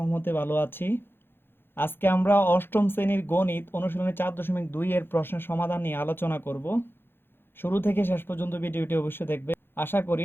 ভালো আছি। আজকে আমরা অষ্টম শ্রেণীর গণিত অনুশীলনী 4.2 এর প্রশ্নের সমাধান নিয়ে আলোচনা করব। শুরু থেকে শেষ পর্যন্ত ভিডিওটি অবশ্যই দেখবে, আশা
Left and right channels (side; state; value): right; late; 0.10 ms